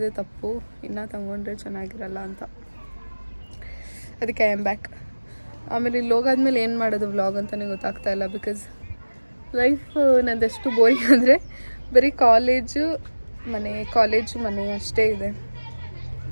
ತಪ್ಪು, ಇನ್ನೂ ತೊಗೊಂಡ್ರೆ ಚೆನ್ನಾಗಿರಲ್ಲ ಅಂತ. ಅದಕ್ಕೆ ಐ ಆಮ್ ಬ್ಯಾಕ್. ಆಮೇಲೆ ಇಲ್ಲಿ ಹೋಗಾದ್ಮೇಲೆ ಏನು ಮಾಡೋದು ವ್ಲಾಗ್ ಅಂತಲೇ ಗೊತ್ತಾಗ್ತಾ ಇಲ್ಲ. ಬಿಕಾಸ್ ಲೈಫ್ ನಂದೆಷ್ಟು ಬೋರಿಂಗ್ ಅಂದರೆ ಬರೀ ಕಾಲೇಜು ಮನೆ ಅಷ್ಟೇ ಇದೆ,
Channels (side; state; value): both; inverted; correlation -1.00